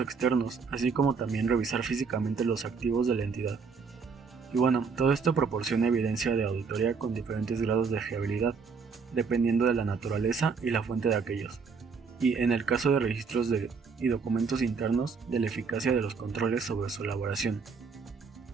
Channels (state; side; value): quieter; left; 5.3 dB